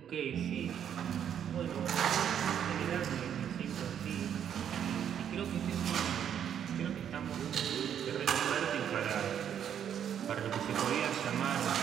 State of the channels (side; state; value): left; quieter; 9.0 dB